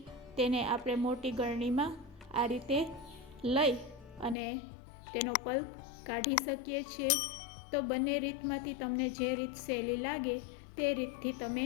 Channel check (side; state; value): right; drops out; at 4.4 s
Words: તેને આપણે મોટી ગળણીમાં આ રીતે લઈ અને તેનો પલ્પ કાઢી શકીએ છીએ। તો બંને રીતમાંથી તમને જે રીત સહેલી લાગે તે રીતથી તમે